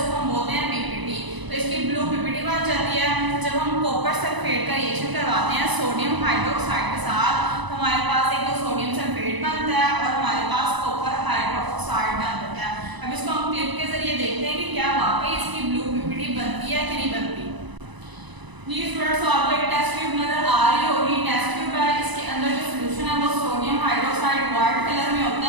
जी स्टूडेंट्स, आपको एक टेस्ट ट्यूब नजर आ रही होगी। टेस्ट ट्यूब है, इसके अंदर जो सोल्यूशन है वो सोडियम हाइड्रोक्साइड व्हाइट कलर में होता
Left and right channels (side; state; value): left; late; 1.0 ms